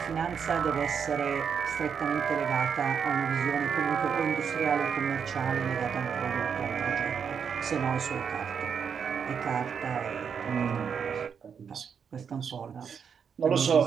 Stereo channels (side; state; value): left; quieter; 7.0 dB